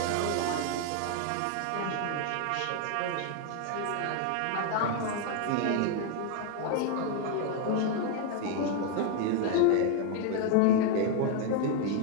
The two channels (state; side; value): different; both; correlation 0.01